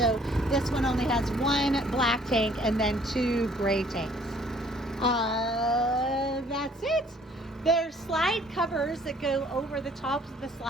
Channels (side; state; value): both; normal; correlation 0.58